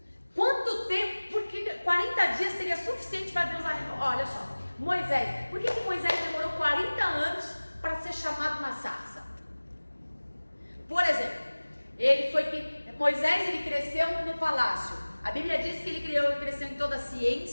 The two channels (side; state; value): both; inverted; correlation -1.00